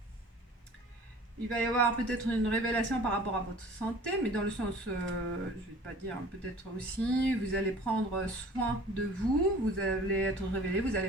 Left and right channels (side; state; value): both; normal; correlation 0.46